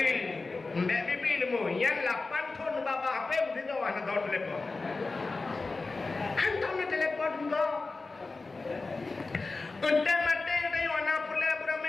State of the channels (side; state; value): right; quieter; 3.7 dB